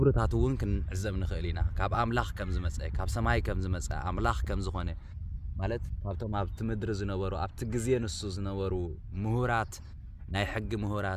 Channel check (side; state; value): both; identical; correlation 1.00